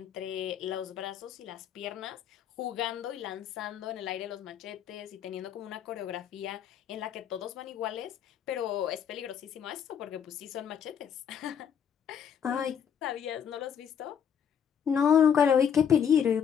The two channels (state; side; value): quieter; right; 8.1 dB